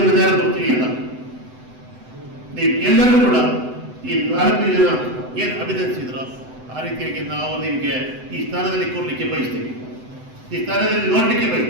ಯಾರು ಗೊತ್ತಿದೆಯಲ್ಲ. ನೀವು ಎಲ್ಲರೂ ಕೂಡ ಈ 4 ಜನ ಏನು ಅಭಿನಂದಿಸಿದ್ರು ಆ ರೀತಿಯಾಗಿ ನಾವು ನಿಮಗೆ ಈ ಸ್ಥಾನದಲ್ಲಿ ಕೂರ್ಲಿಕ್ಕೆ ಬಯಸ್ತೀವಿ, ಈ ಸ್ಥಾನದಲ್ಲಿ ನೋಡ್ಲಿಕ್ಕೆ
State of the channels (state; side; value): late; left; 7.9 ms